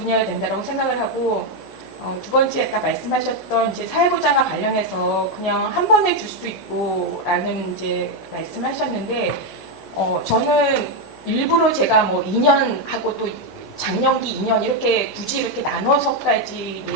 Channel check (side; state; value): both; normal; correlation 0.04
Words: 된다고 생각을 하고 두 번째 아까 말씀하셨던 이제 사회보장과 관련해서 그냥 한 번에 줄 수도 있고라는 이제 말씀하셨는데 저는 일부러 제가 2년 하고 또 장년기 2년 이렇게 굳이 이렇게 나눠서까지